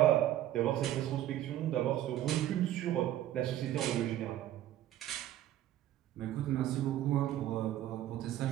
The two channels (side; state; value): left; quieter; 13.0 dB